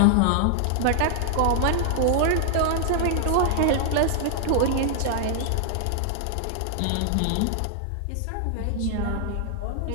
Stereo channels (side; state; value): both; different; correlation -0.01